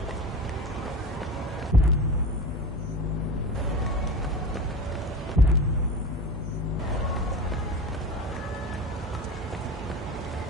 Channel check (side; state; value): both; normal; correlation 0.31